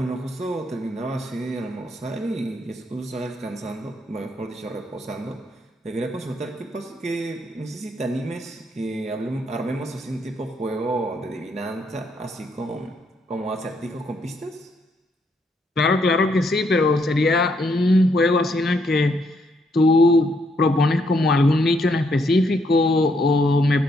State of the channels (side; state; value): both; normal; correlation 0.74